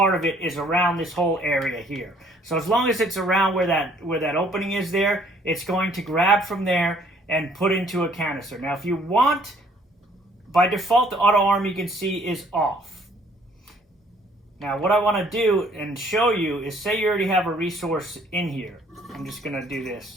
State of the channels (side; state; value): both; normal; correlation 0.61